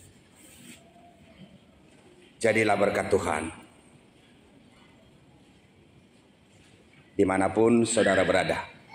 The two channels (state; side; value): identical; both; correlation 1.00